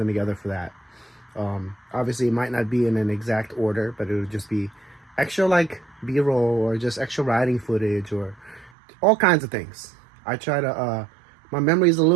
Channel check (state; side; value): drops out; left; at 8.7 s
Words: together for that. Obviously, it might not be in an exact order, but it would just be extra like B-roll or just extra riding footage or all kinds of things. I try to, my memory is a